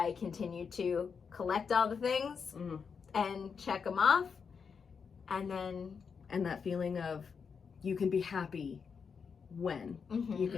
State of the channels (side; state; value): right; quieter; 6.0 dB